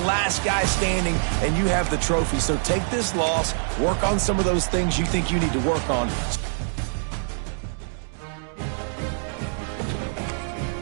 last guy standing, and you have the trophy. So take this loss, work on some of those things you think you need to work on.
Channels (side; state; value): left; silent; digital silence